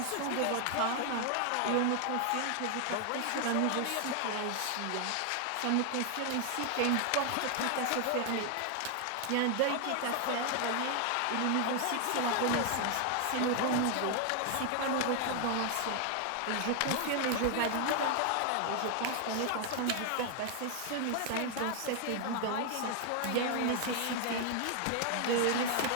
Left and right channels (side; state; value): both; different; correlation 0.00